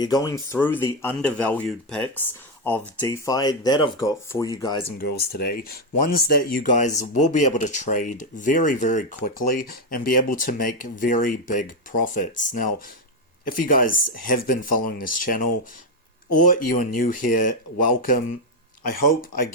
going through the undervalued picks of DeFi that I've got for you guys and girls today. Ones that you guys will be able to trade very, very quickly and be able to make very big profits. Now, if you guys have been following this channel or you are new here, welcome. I hope I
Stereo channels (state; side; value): normal; both; correlation 0.05